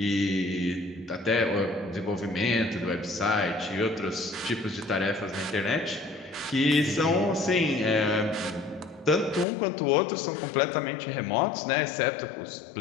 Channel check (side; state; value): right; drops out; at 9.5 s